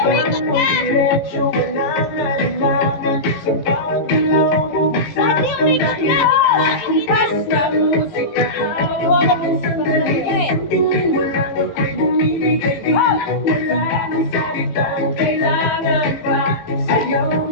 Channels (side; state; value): right; late; 18 ms